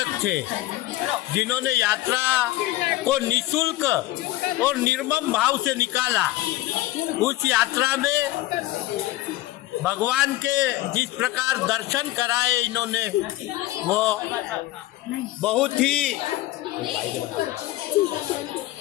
थे, जिन्होंने यात्रा को निशुल्क और निर्मम भाव से निकाला, उस यात्रा में भगवान के जिस प्रकार दर्शन कराए इन्होंने, वो बहुत ही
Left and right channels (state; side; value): quieter; right; 16.8 dB